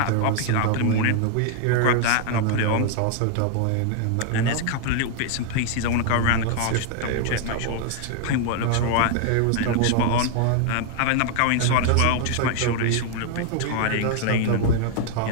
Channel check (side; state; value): both; different; correlation 0.00